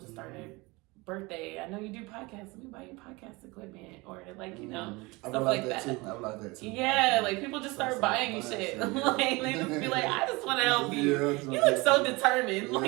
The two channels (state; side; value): quieter; left; 24.3 dB